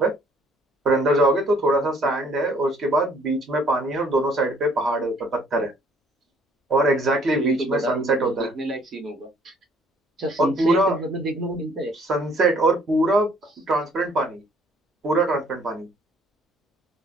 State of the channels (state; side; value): normal; both; correlation 0.60